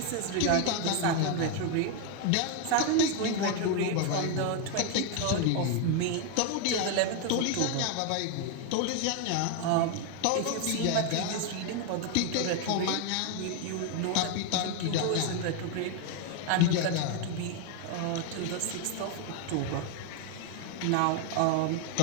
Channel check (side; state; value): both; different; correlation 0.01